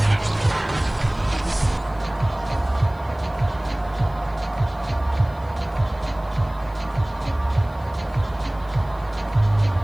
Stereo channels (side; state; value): left; noise; hiss, 29 dB below the sound